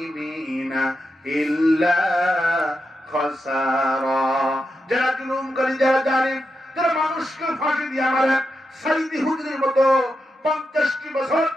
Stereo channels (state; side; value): normal; both; correlation 0.86